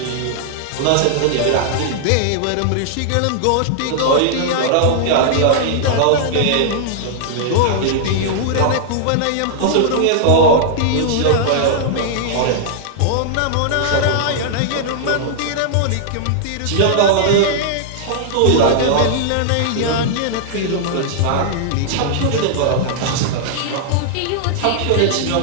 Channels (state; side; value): different; both; correlation -0.01